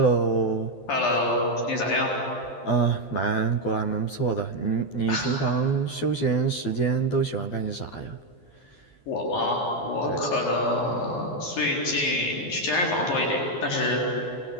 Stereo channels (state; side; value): late; right; 12 ms